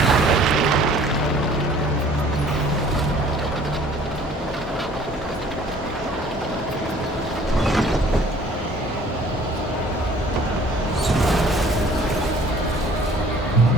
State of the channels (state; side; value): normal; both; correlation 0.53